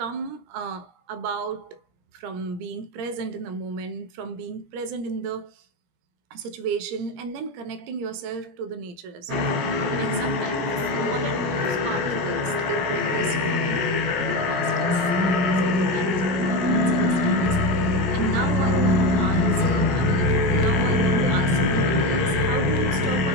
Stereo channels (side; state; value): left; late; 17 ms